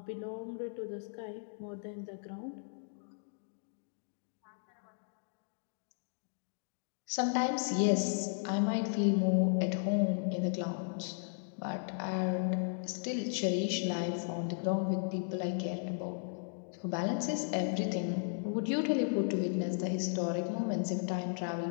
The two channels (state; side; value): silent; right; digital silence